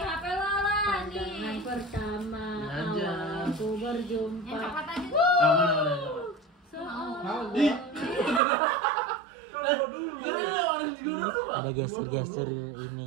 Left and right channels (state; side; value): drops out; left; at 8.4 s